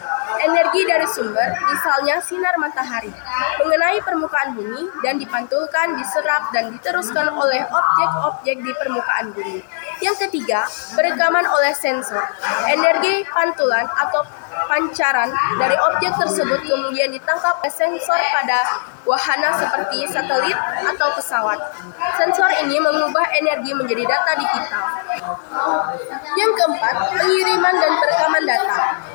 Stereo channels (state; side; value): silent; right; digital silence